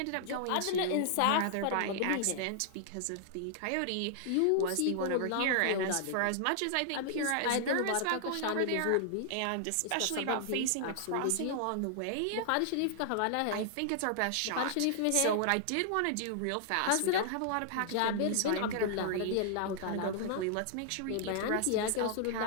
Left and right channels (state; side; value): different; both; correlation 0.00